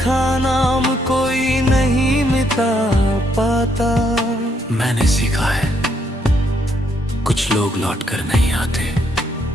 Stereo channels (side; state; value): both; normal; correlation 0.73